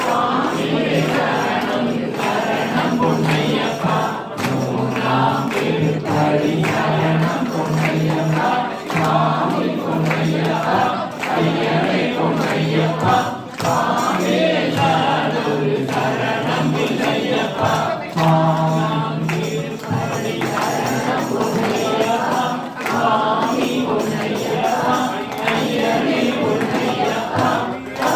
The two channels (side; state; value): both; identical; correlation 1.00